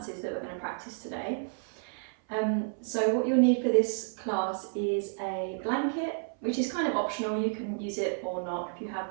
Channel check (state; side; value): silent; left; 57 dB below the other